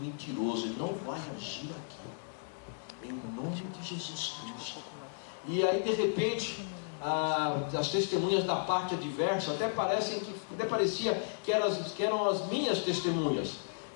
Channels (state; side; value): silent; right; digital silence